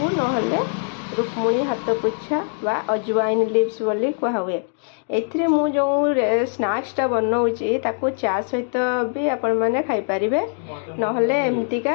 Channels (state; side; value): silent; right; 64 dB below the other